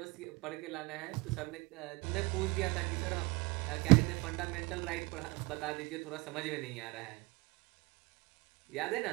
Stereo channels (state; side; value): quieter; left; 25.3 dB